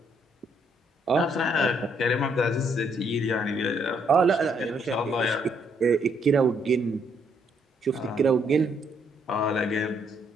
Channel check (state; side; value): normal; both; correlation 0.71